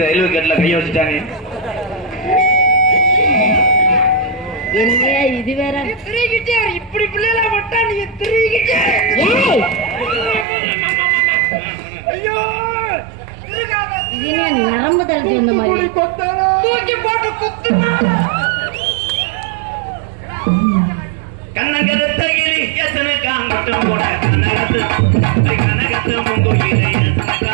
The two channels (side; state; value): left; drops out; at 10.5 s